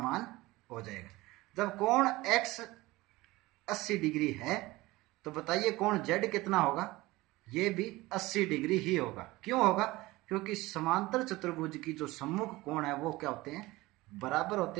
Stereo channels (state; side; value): quieter; left; 19.8 dB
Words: हो जाएगा। जब कोण x 80 डिग्री है तो बताइए कोण z कितना होगा? ये भी 80 डिग्री ही होगा। क्यों होगा? क्योंकि समांतर चतुर्भुज की जो सम्मुख कोण है वो क्या होते हैं? बराबर